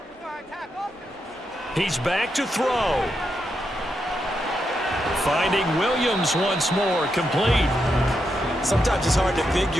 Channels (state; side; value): normal; both; correlation 0.84